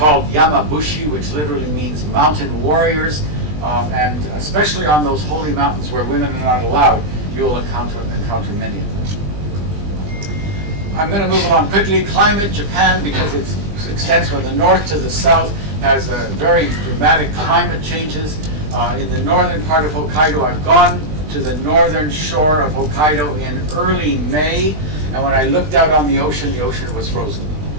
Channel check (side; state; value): left; late; 20 ms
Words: yamabushi, which literally means mountain warriors. And especially on those holy mountains where women are not allowed, you will encounter many of them. I'm going to move along quickly. Climate, Japan, because it extends from the north to the south, has very dramatic climate changes. In the northern part of Hokkaido, I've gone to the northern shore of Hokkaido in early May, and when I looked out on the ocean was frozen.